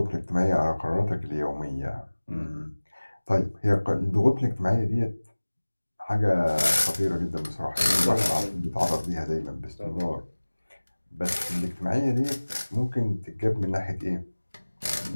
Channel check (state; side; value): inverted; both; correlation -1.00